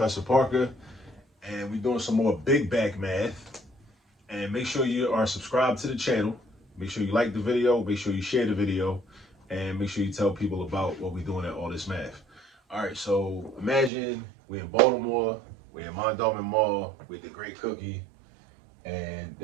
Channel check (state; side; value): drops out; left; at 13.9 s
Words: Parker, and we're doing some more big bag math. And make sure you are subscribed to the channel. Make sure you like the video. Make sure you share the video, and make sure you tell people about what we're doing at All This Math. All right, so imagine we're in Baltimore, we're in Mondawmin Mall with the Great Cookie, and